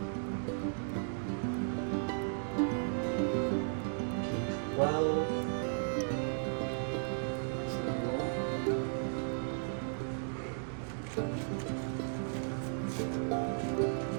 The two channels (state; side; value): silent; left; digital silence